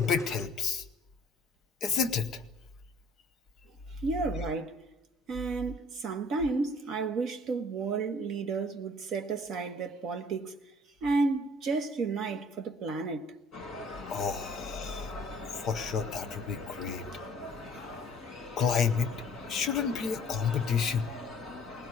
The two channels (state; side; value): normal; both; correlation 0.54